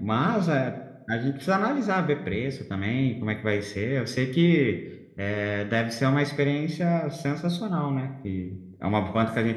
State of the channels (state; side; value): identical; both; correlation 1.00